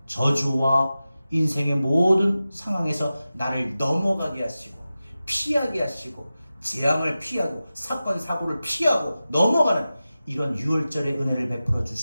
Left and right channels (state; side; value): inverted; both; correlation -0.94